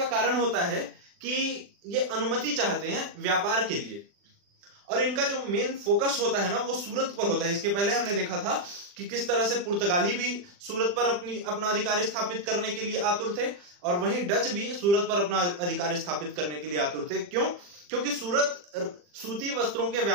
कारण होता है कि ये अनुमति चाहते हैं व्यापार के लिए और इनका जो मेन फोकस होता है ना वो सूरत पर होता है। इसके पहले हमने देखा था कि किस तरह से पुर्तगाली भी सूरत पर अपना अधिकार स्थापित करने के लिए आतुर थे और वहीं डच भी सूरत पर अपना अधिकार स्थापित करने के लिए आतुर थे। क्यों? क्योंकि सूरत सूती वस्त्रों के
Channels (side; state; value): left; late; 40 ms